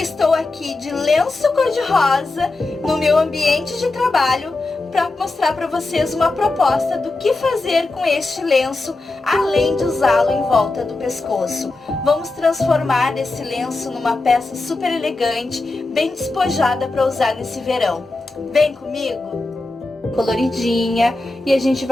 aqui de lenço cor-de-rosa no meu ambiente de trabalho para mostrar para vocês uma proposta do que fazer com este lenço, além de usá-lo em volta do pescoço. Vamos transformar esse lenço numa peça super elegante, bem despojada para usar nesse verão. Vem comigo? Coloridinha, e a gente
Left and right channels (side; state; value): right; quieter; 3.2 dB